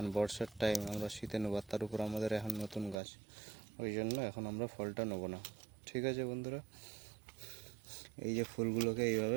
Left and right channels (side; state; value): left; drops out; at 3.0 s